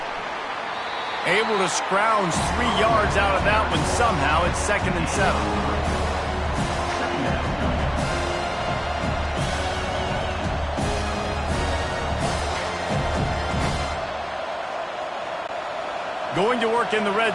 Able to scrounge 3 yards out of that one somehow. It's 2nd and 7. Going to work in the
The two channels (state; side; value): identical; both; correlation 1.00